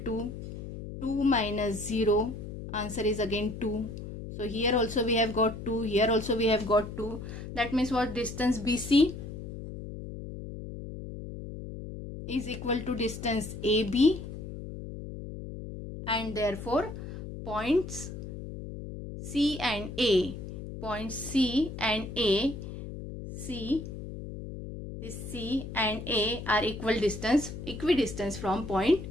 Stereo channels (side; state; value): left; noise; hum, 9 dB below the sound